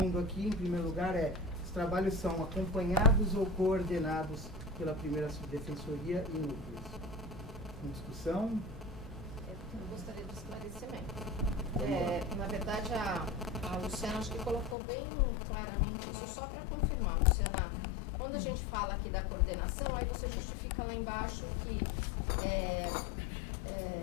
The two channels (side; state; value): right; drops out; at 14.8 s